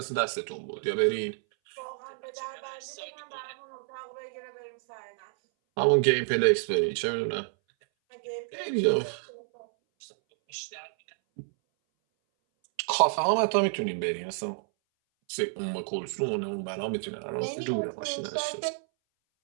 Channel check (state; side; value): silent; left; 58 dB below the other